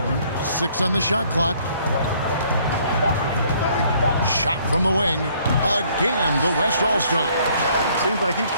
6 on the shot clock. Shot from the wing. Again, the West All-Star. Seems like he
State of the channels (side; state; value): both; inverted; correlation -0.62